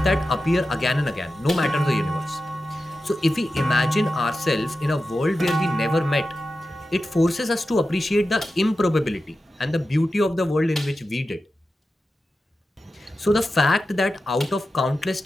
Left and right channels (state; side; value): normal; both; correlation 0.92